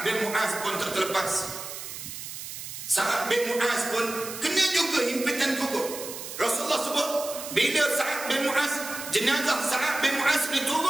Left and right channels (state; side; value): noise; right; hiss, 9 dB below the sound